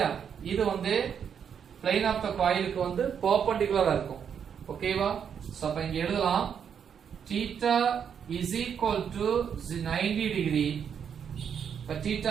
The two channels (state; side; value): quieter; left; 7.7 dB